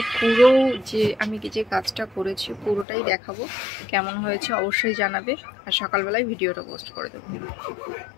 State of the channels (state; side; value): drops out; right; at 2.9 s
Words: পুরো যে আমি যে কাজটা করেছি পুরোটাই দেখাবো। কেমন হয়েছে অবশ্যই জানাবে। আর সকালবেলায় ভিডিওটা পোস্ট করে দেবো।